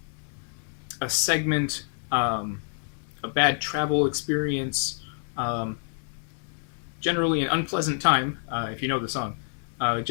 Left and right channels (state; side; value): silent; right; 60 dB below the other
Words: segment, a bad travel experience, generally an unpleasant time, if you know the song,